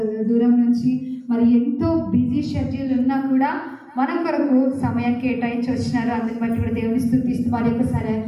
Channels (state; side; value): identical; both; correlation 1.00